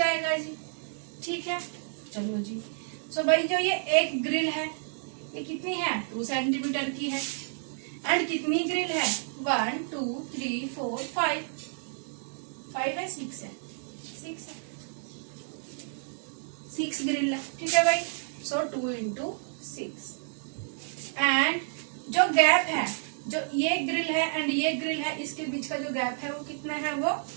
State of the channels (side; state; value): left; silent; digital silence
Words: जी। ठीक है, चलो जी। सो भाई जो ये एक ग्रिल है, ये कितनी है, 2 सेंटीमीटर की है। एंड कितनी ग्रिल है, 1 2 3 4 5 है, 6 है, 6 ग्रिल है। ठीक है भाई, सो 2 into 6। एंड जो गैप है, जो ये ग्रिल है एंड ये ग्रिल है, इसके बीच का जो गैप है वो कितना है, वो